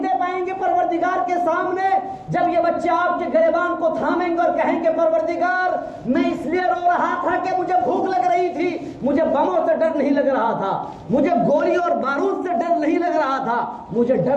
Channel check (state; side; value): identical; both; correlation 1.00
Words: پائیں گے پروردگار کے سامنے جب یہ بچے آپ کے گریبان کو تھامیں گے اور کہیں گے پروردگار میں اس لیے رو رہا تھا کہ مجھے بھوک لگ رہی تھی، مجھے بموں سے ڈر نہیں لگ رہا تھا، مجھے گولی اور بارود سے ڈر نہیں لگ رہا تھا، مجھے